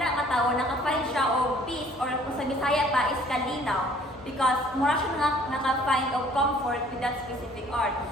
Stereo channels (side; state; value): both; normal; correlation 0.56